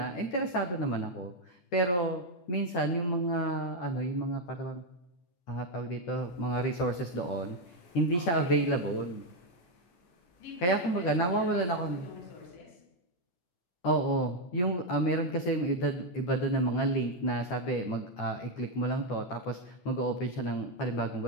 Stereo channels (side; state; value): right; late; 11 ms